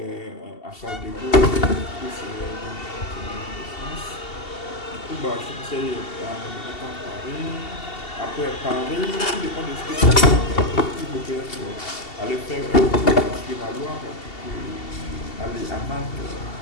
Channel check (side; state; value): right; late; 2.7 ms